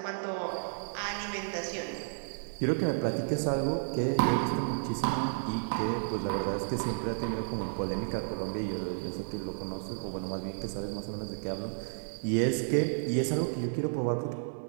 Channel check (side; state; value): left; silent; 56 dB below the other